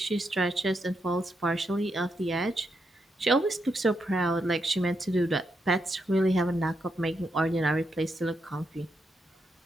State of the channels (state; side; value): normal; both; correlation 0.82